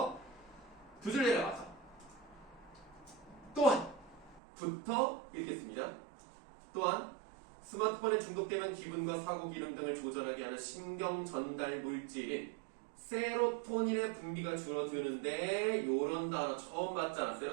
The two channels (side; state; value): left; drops out; at 4.4 s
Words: 두 줄 내려가서 또한 부터 읽겠습니다. 또한 스마트폰에 중독되면 기분과 사고 기능 등을 조절하게 하는 신경 전달 물질인 세로토닌의 분비가 줄어드는데 요런 단어 처음 봤잖아.